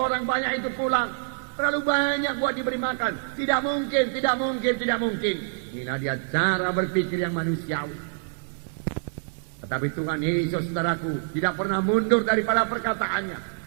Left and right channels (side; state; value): left; silent; digital silence